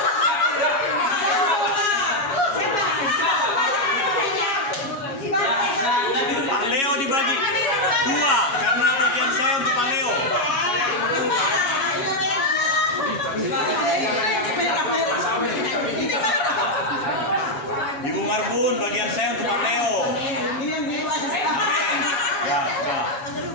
Pak Leo dibagi 2 karena bagian saya untuk Pak Leo. Ibu Marbun, bagian saya untuk Pak Leo. Amin. Ya, ya.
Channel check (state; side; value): late; right; 8.3 ms